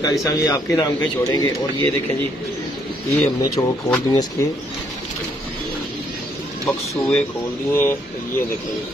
साहब ये आपके नाम का ही छोड़ेंगे। और ये देखें जी ये हमने चौक खोल दिए, इसके बक्सूए खोल दिए। ये देखें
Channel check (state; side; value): normal; both; correlation 0.70